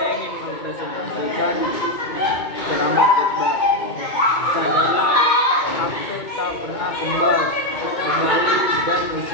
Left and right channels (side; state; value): right; late; 2.2 ms